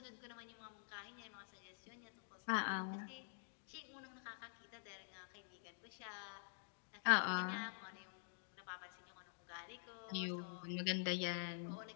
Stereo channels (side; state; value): right; silent; digital silence